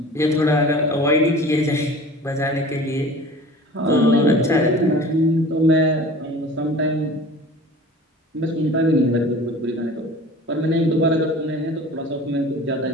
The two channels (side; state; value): both; normal; correlation 0.42